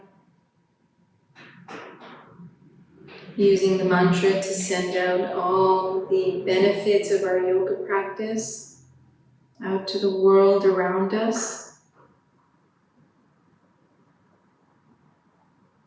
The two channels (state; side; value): identical; both; correlation 1.00